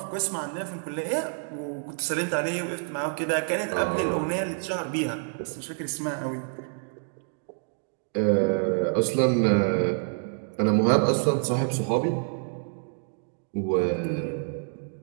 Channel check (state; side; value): silent; left; 60 dB below the other